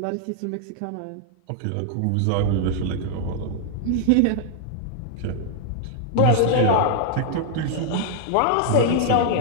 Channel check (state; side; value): different; both; correlation -0.01